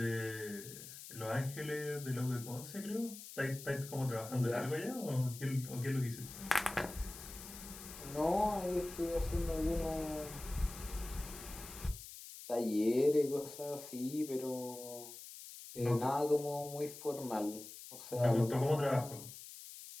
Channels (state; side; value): noise; left; hiss, 13 dB below the sound